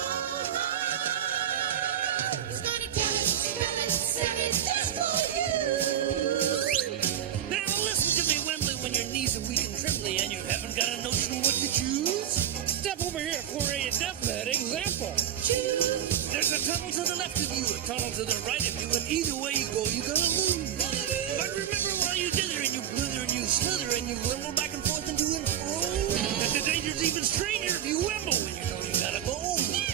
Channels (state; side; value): quieter; left; 10.0 dB